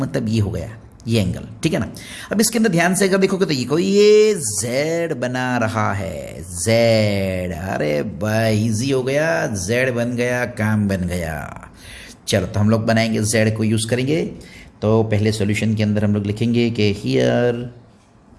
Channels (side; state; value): both; identical; correlation 1.00